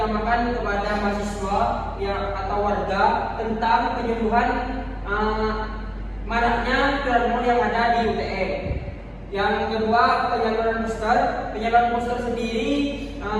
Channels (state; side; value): identical; both; correlation 1.00